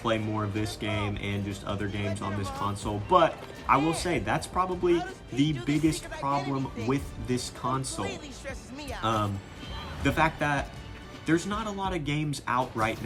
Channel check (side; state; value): both; identical; correlation 1.00